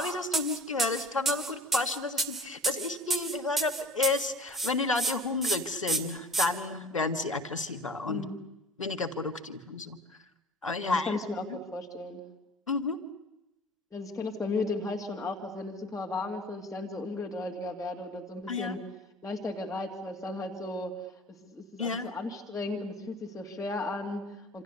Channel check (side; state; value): both; normal; correlation 0.44